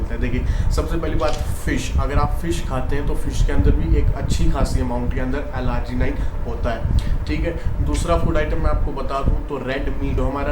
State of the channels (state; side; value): identical; both; correlation 1.00